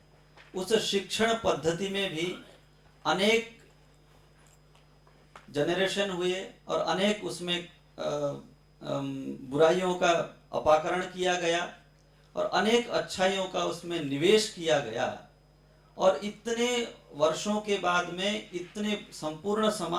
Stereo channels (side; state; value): both; identical; correlation 1.00